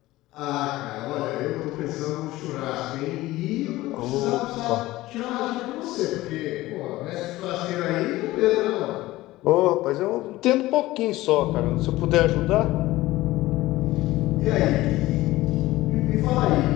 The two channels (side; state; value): right; quieter; 17.6 dB